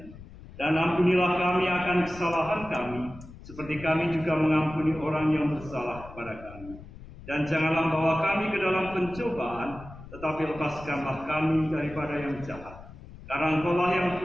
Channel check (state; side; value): noise; left; rumble, 17 dB below the sound